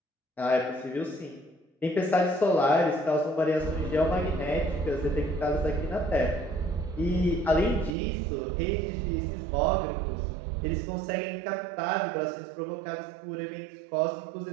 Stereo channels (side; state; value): left; drops out; at 8.0 s